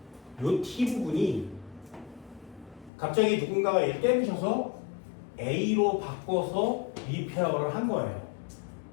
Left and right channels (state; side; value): drops out; right; at 2.9 s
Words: 이 T 부분이 갑자기 누군가가 얘를 깨부셔서 A로 바꿔서 리페어를 한 거예요.